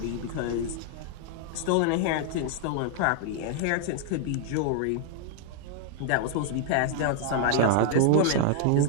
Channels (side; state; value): both; different; correlation 0.00